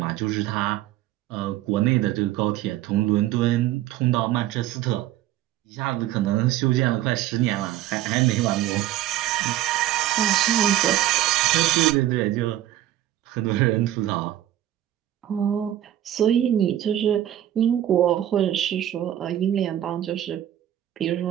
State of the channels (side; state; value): left; quieter; 12.8 dB